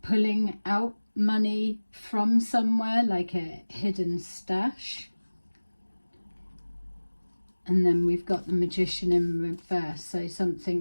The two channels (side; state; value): both; inverted; correlation -1.00